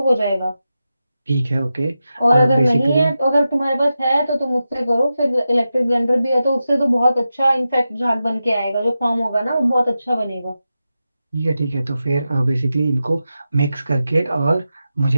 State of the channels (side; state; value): both; inverted; correlation -0.91